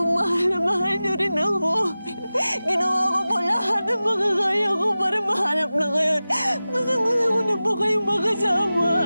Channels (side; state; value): both; inverted; correlation -0.96